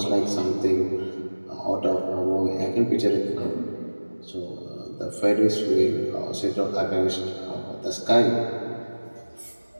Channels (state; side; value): inverted; both; correlation -1.00